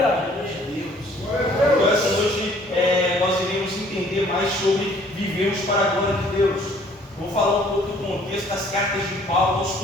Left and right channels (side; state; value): both; normal; correlation 0.58